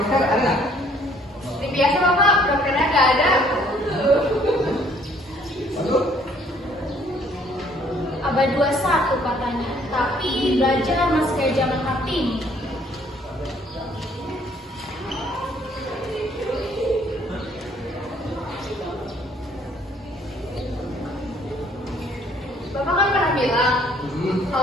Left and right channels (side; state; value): both; normal; correlation 0.61